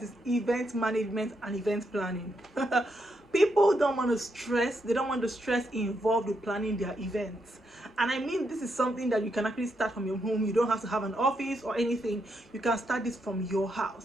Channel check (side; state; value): both; normal; correlation 0.80